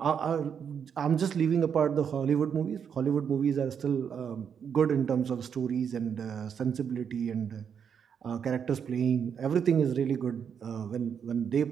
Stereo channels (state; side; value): quieter; left; 7.5 dB